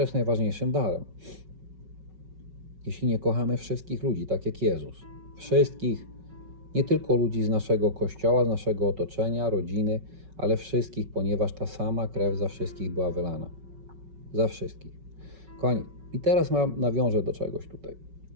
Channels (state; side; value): late; left; 5.3 ms